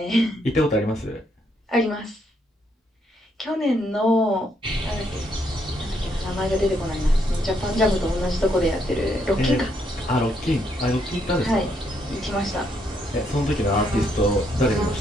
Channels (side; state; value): both; normal; correlation 0.74